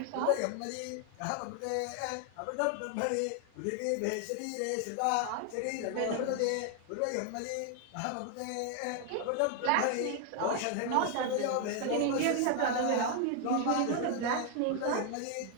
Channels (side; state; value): both; different; correlation 0.00